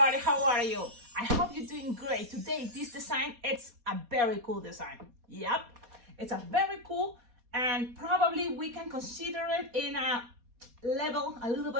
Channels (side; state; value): left; late; 4.2 ms